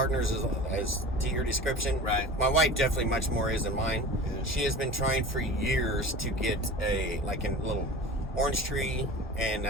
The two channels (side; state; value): both; normal; correlation 0.36